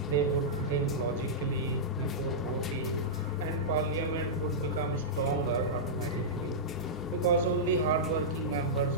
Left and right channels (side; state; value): both; normal; correlation -0.12